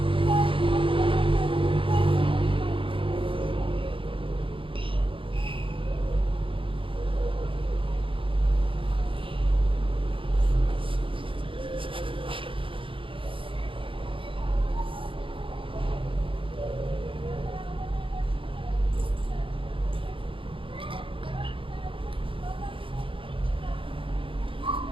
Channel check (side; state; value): left; late; 0.25 ms